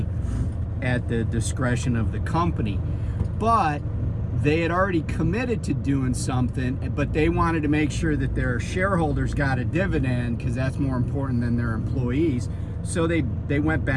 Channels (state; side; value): identical; both; correlation 1.00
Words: at the discretion of the company. But they had already committed to doing something, but they wanted to make sure that their shareholders got a dividend because that's more important than their employees. So they went